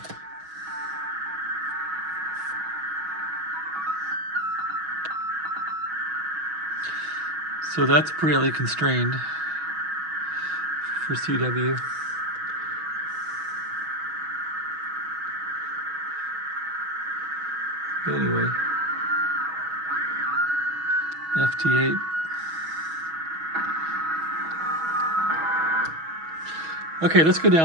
So that's pretty constrained for CW. Anyway, FT8. Okay, let's go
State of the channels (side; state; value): left; late; 6.2 ms